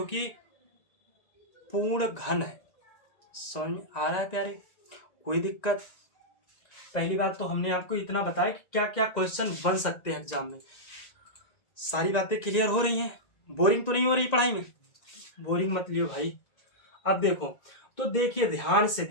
कि पूर्ण घन है। समझ में आ रहा है प्यारे, कोई दिक्कत। पहली बात तो हमने आपको इतना बताया कि क्या क्या क्वेश्चन बन सकते हैं एग्जाम में। सारी बातें क्लियर हो रही हैं, बोरिंग तो नहीं हो रही पढ़ाई में, बोरिंग मत लियो भाई। अब देखो तो देखिए, ध्यान से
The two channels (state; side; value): late; right; 1.9 ms